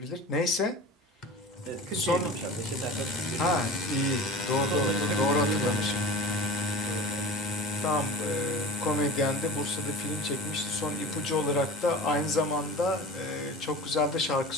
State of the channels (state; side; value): normal; both; correlation 0.35